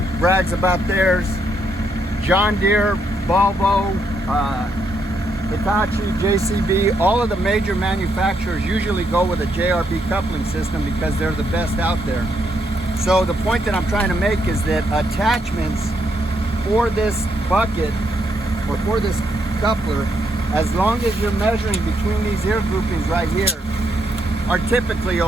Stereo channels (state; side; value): normal; both; correlation 0.77